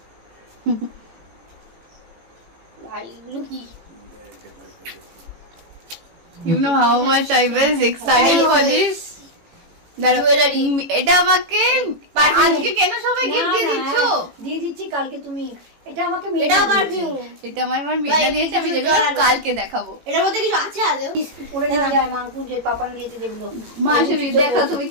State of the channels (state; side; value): late; left; 18 ms